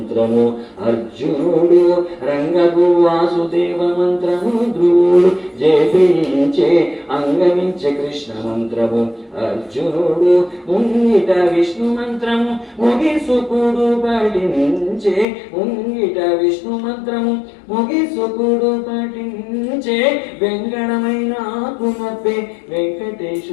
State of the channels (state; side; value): drops out; right; at 15.2 s